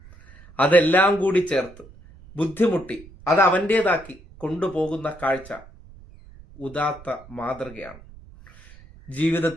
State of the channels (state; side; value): noise; right; rumble, 21 dB below the sound